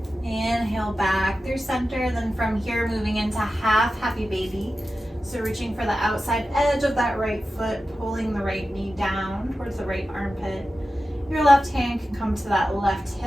Inhale back through center, then from here moving into half happy baby. So reaching for the outside edge of that right foot, pulling the right knee down towards the right armpit. Your left hand can come to that left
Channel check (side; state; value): both; normal; correlation 0.93